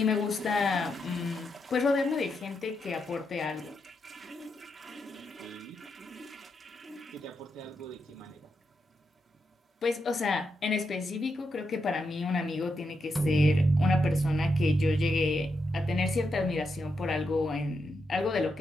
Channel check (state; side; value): normal; both; correlation 0.83